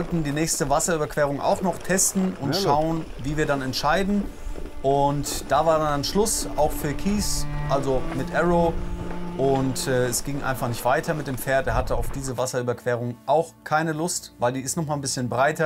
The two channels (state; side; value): identical; both; correlation 1.00